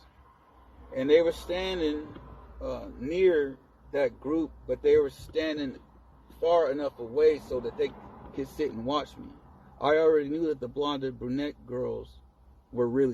And they were standing near that group, but they were standing far enough away so that they could sit and watch me. I already knew that the blonde and brunette girls were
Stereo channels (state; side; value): identical; both; correlation 1.00